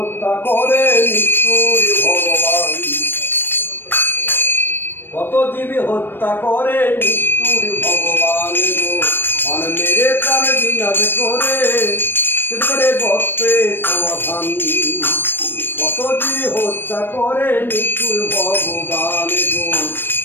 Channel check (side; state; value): right; late; 0.097 ms